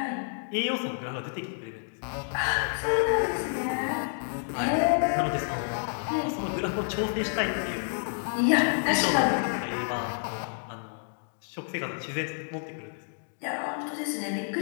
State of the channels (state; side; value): silent; right; digital silence